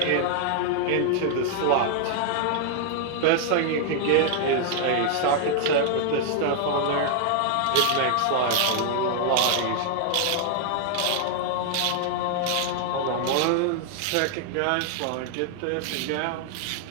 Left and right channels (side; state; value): both; different; correlation 0.00